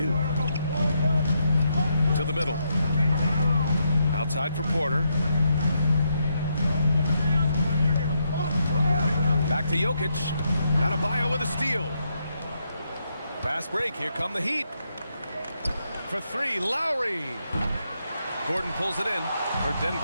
To the middle. Outside for Porter. Back to Jokic. Adebayo with a steal. Fast break. Here come the Heat. For 3, Lowry. Gordon pulls it in. For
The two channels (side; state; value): both; inverted; correlation -0.79